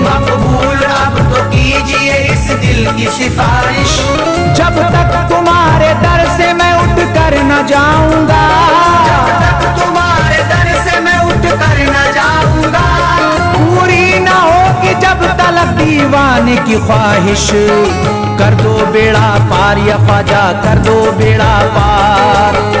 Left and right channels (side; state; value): both; identical; correlation 1.00